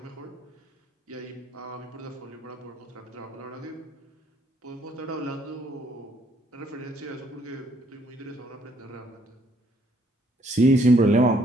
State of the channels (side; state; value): both; normal; correlation 0.67